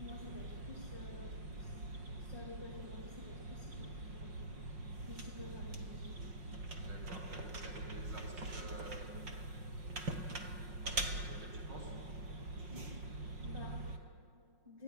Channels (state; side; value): late; left; 5.5 ms